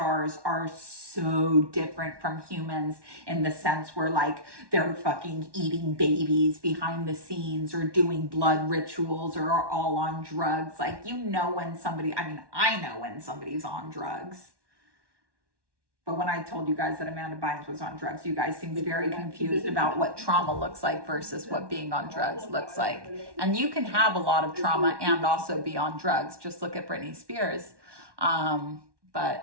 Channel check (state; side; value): late; left; 1.1 ms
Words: are so different from humans in the sense where like they're fucking eating babies behind the scenes or doing blood rituals or are all on drugs. Like, I know when somebody's on drugs. But when I told you guys that Amanda Bynes was on drugs, you guys seemed very confused about what trauma looks like versus what being on drugs looks like. And you can have a lot of trauma and also be on drugs. Just look at Britney Spears.